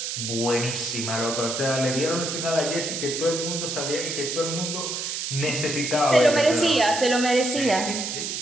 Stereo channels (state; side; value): noise; right; hiss, 4 dB below the sound